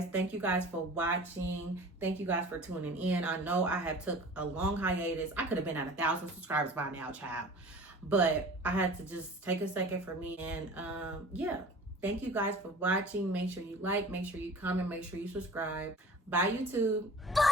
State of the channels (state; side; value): normal; both; correlation 0.43